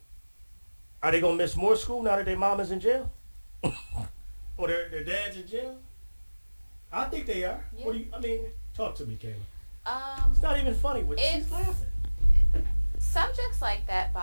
are they going to miss more school now that their mama's in jail? Or their dad's in jail? I think they are. Yeah. Talk to me, Kayla. It's not even funny. She's laughing. Subjects like that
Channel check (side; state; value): both; inverted; correlation -1.00